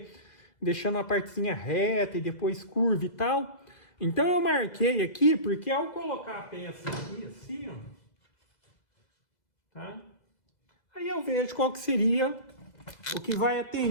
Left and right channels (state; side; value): late; right; 2.0 ms